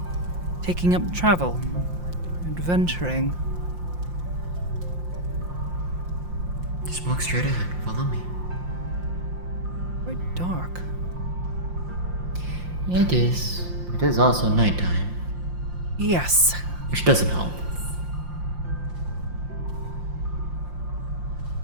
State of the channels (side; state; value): left; late; 5.7 ms